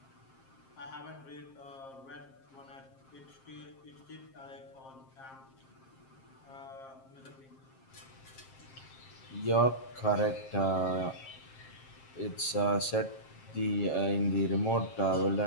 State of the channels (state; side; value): late; right; 7.5 ms